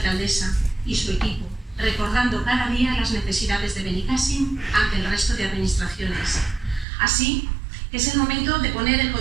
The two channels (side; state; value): left; drops out; at 6.9 s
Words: y su equipo, recordando cada día las necesidades de Benicàssim ante el resto de administraciones. Así que es el momento de poner el